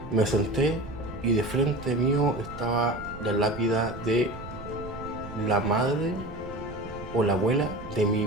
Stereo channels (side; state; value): right; noise; rumble, 13 dB below the sound